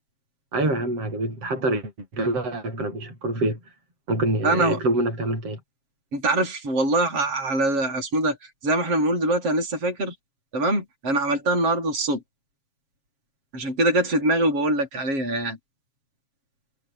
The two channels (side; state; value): left; late; 7.3 ms